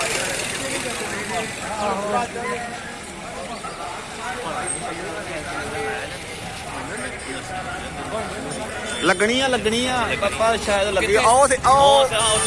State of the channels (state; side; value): identical; both; correlation 1.00